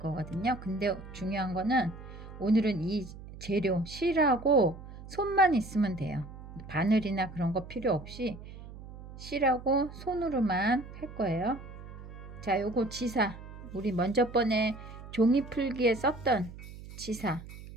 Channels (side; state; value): right; noise; hum, 14 dB below the sound